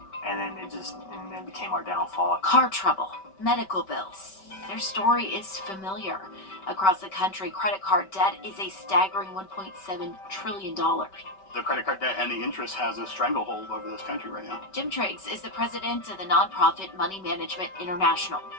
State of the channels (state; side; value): late; right; 5.2 ms